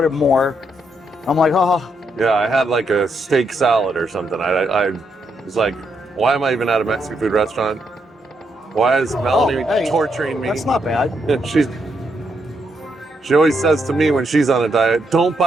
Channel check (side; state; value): both; normal; correlation 0.79